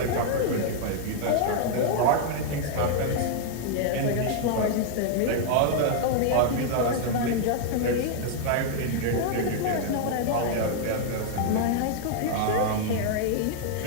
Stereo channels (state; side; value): different; both; correlation 0.00